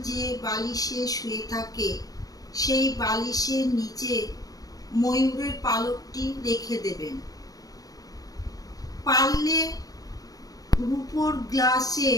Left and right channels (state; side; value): late; right; 0.18 ms